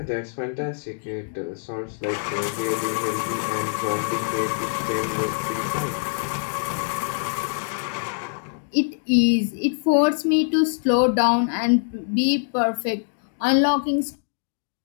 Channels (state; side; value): silent; right; digital silence